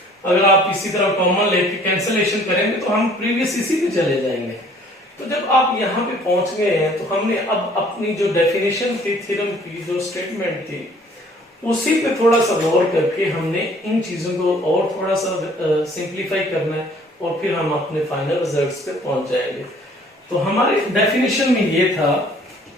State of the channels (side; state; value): both; normal; correlation 0.56